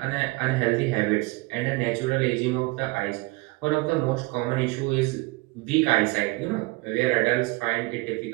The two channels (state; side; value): quieter; left; 23.8 dB